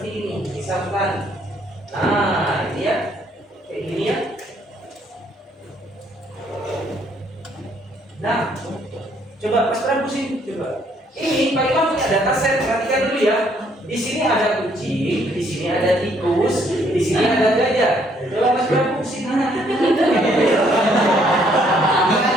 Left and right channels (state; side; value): normal; both; correlation 0.67